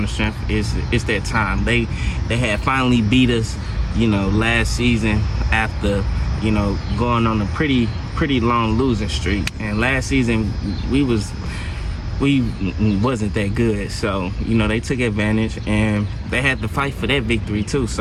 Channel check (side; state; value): both; identical; correlation 1.00